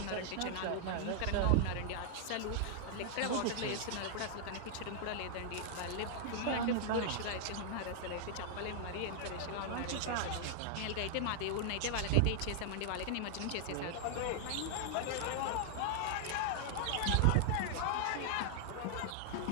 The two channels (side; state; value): both; different; correlation -0.01